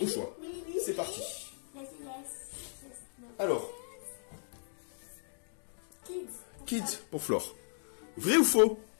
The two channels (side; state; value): right; silent; digital silence